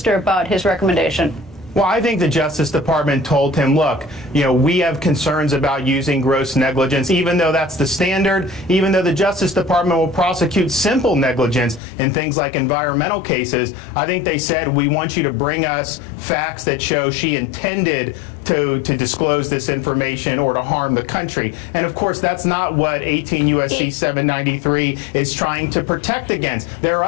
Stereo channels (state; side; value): drops out; right; at 11.8 s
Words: about his recommendation? Well, I think the Justice Department told him, look, we have concerns about using gross negligence, even though that's the standard, even though the Justice Department will prosecute simple negligence in things like environmental cases. I think they said, we want you to bring us facts that show she intended to disclose this information or to harm the country. And of course, that's not what 18 U.S.C. 793 is trying to protect against. There are